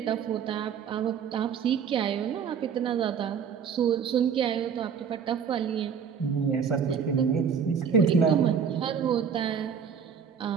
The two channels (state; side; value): quieter; left; 7.1 dB